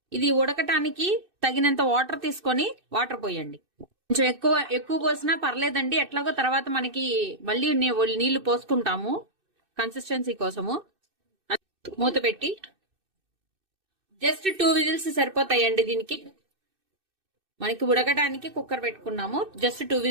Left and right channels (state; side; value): late; left; 2.6 ms